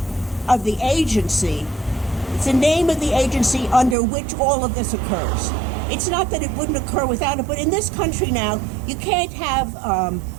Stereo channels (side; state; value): left; drops out; at 4.0 s